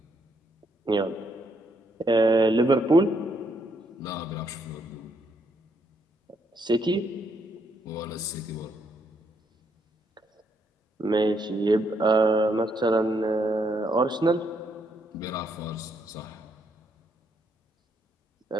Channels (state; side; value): normal; both; correlation 0.74